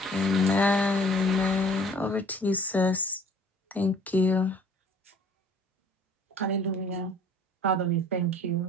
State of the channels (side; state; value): both; normal; correlation 0.52